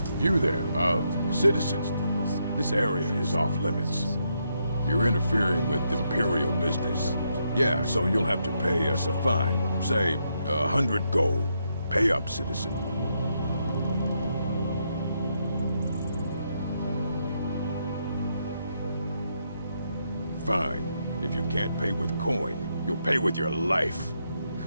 You there, citizens. This area is off limits. You're interfering with Imperial business. Yeah, so you'll have to pay us a fine. Say, 100 gold. Pay up, citizen. Fine. If you can't pay with coin, you'll pay with your life.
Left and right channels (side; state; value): both; inverted; correlation -0.79